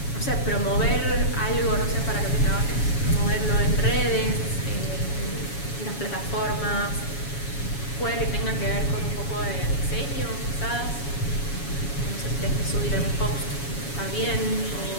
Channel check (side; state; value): right; late; 7.1 ms